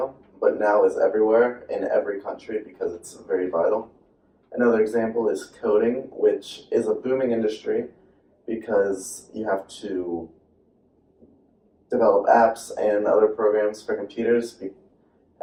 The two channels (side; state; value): both; identical; correlation 1.00